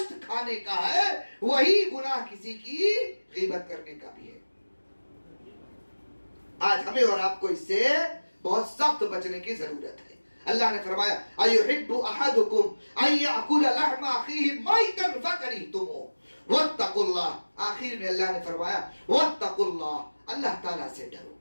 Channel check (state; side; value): inverted; both; correlation -1.00